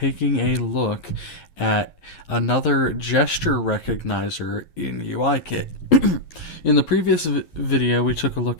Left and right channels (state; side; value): late; right; 11 ms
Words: a look at another gesture recognizer in UIKit. In the previous video we took a